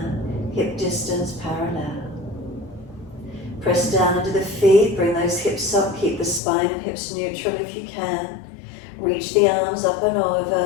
Hip distance parallel. Press down into the feet. Bring those hips up. Keep the spine and hips neutral if you can. Reach the arms up and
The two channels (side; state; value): right; drops out; at 6.4 s